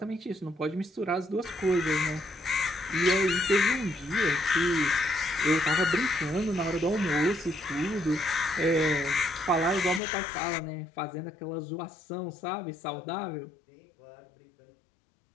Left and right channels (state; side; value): drops out; right; at 10.0 s